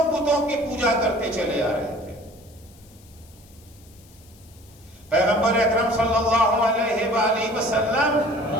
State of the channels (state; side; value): noise; left; hiss, 27 dB below the sound